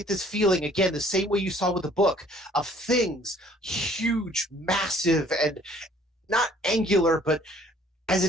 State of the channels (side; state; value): both; normal; correlation 0.57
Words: this feeling, again, the same way you saw with the book, of things huge, massive, and not angular, but as